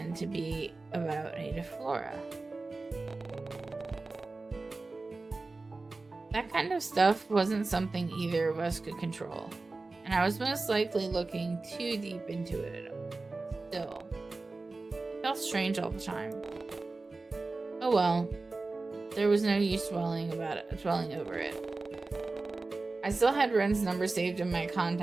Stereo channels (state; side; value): quieter; left; 3.5 dB